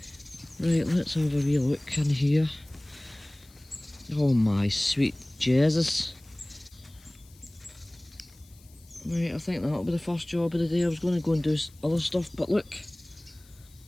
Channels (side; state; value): left; noise; hiss, 27 dB below the sound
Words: Right, let's have a wee look in here. Oh my sweet Jesus. Right, I think that'll be the first job of the day. I was going to go and do other stuff, but look.